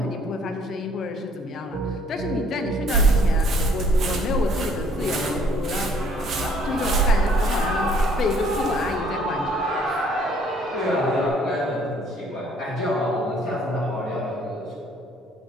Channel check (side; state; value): both; normal; correlation 0.61